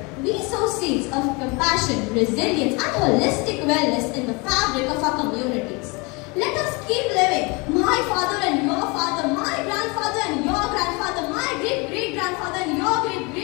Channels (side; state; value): right; quieter; 28.2 dB